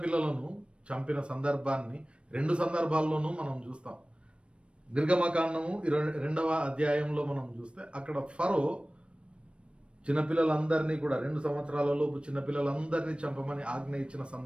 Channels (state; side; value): late; left; 0.059 ms